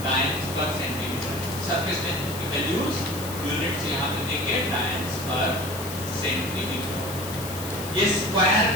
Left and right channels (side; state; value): left; noise; hiss, 11 dB below the sound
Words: टाइम्स पर सेंटीमीटर। सरफेस टेंशन की वैल्यूज यूनिट्स यहाँ पे देखिए, टाइम्स पर सेंटीमीटर। ये स्क्वायर